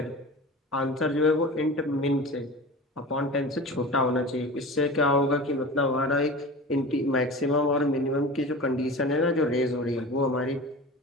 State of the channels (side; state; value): both; normal; correlation 0.33